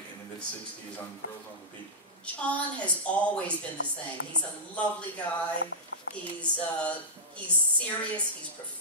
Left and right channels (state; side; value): normal; both; correlation -0.13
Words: in the mid-'60s on Girls on the Beat? John has always been the same. He's a lovely guy. He's serious. He's